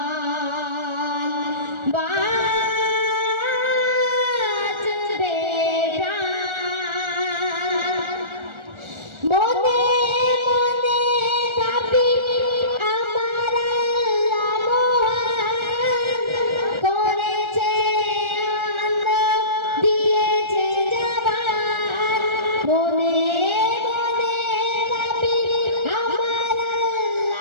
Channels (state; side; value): late; left; 1.3 ms